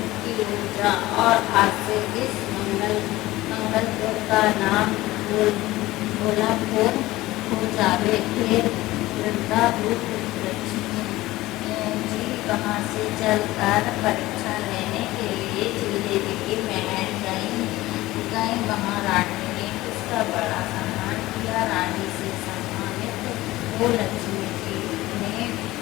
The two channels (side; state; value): right; quieter; 17.8 dB